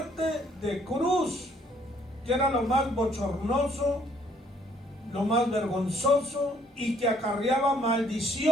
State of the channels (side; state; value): both; normal; correlation 0.64